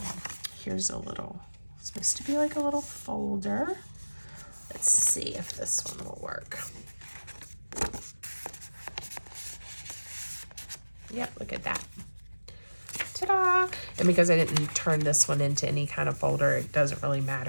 Here's a little, it's supposed to be like a little folder. Let's see if this one will work. Yep, look at that. Ta-da! And because I didn't turn this one into any kind of folder, it doesn't really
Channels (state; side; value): inverted; both; correlation -1.00